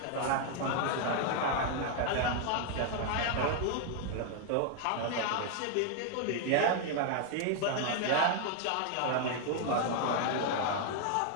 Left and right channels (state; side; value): different; both; correlation 0.00